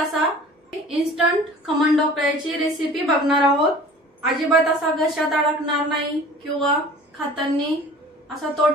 इन्स्टंट खमण ढोकळ्याची रेसिपी बघणार आहोत। अजिबात असा घशात अडकणार नाही किंवा खाताना असा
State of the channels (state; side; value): normal; both; correlation 0.45